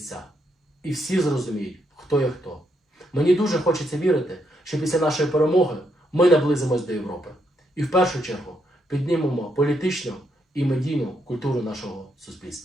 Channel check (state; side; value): normal; both; correlation 0.77